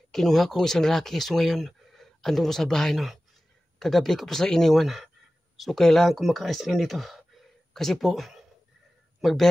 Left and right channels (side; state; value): both; normal; correlation 0.96